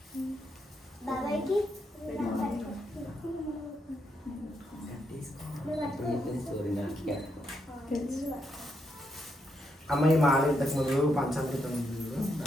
బాబాయ్కి అమ్మాయి మాల ఇంతకు ముందు పంచామృతం ఉంది చూడు,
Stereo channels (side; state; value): both; normal; correlation 0.80